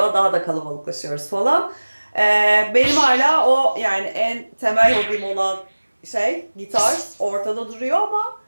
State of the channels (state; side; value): inverted; both; correlation -1.00